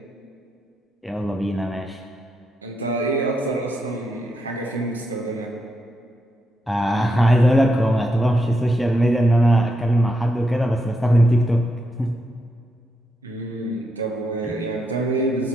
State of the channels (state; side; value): normal; both; correlation 0.82